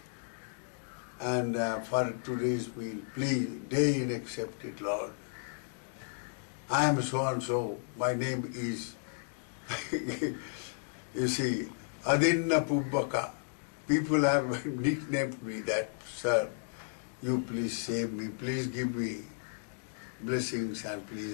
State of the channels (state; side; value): silent; right; digital silence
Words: And for today's meal, please, deign accept it, Lord. I am so and so, my name is," you see, Adinna Pubbaka. People have nicknamed me that, "Sir, you please save me, please give me blessings and